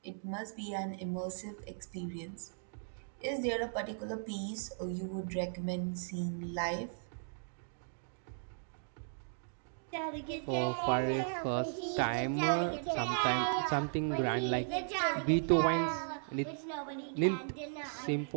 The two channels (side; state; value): left; silent; digital silence